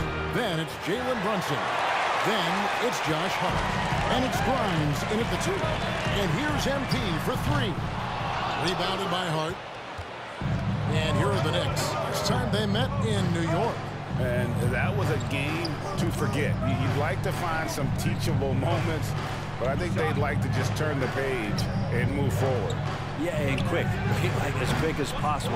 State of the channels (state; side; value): identical; both; correlation 1.00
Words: Then it's Jalen Brunson. Then it's Josh Hart. And it's Grimes in at the 2. And here's MP for 3. Rebounded by Hart. And here are the Knicks. This time they met in New York. And that was a game to forget. You'd like to find some teachable moments, but I think they'd like to just turn the page and move forward. Yeah, and quick. Like as quick as